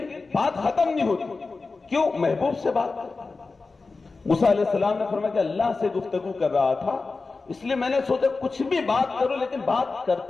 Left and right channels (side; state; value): right; quieter; 4.0 dB